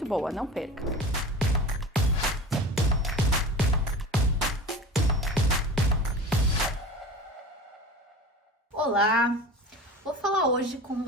boa, não perca! Olá! Vou falar hoje com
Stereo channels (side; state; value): both; normal; correlation 0.35